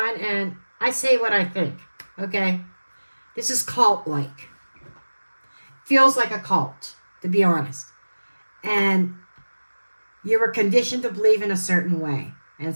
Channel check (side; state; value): both; inverted; correlation -1.00